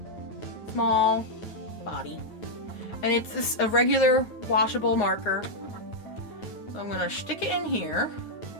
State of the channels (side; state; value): right; late; 9.6 ms